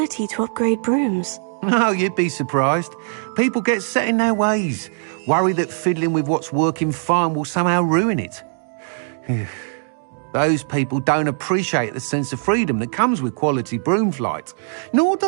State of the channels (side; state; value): left; silent; digital silence